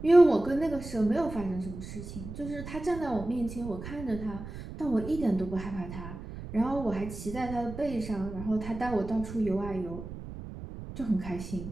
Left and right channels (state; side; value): noise; right; rumble, 10 dB below the sound